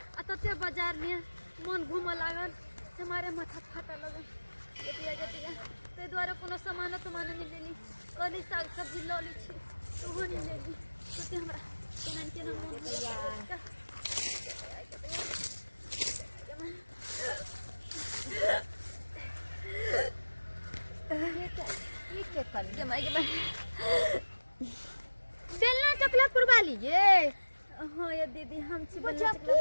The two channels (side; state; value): both; inverted; correlation -1.00